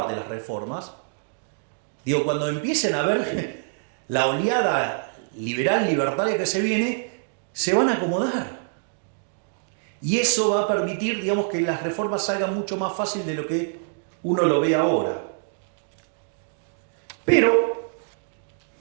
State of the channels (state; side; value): silent; left; digital silence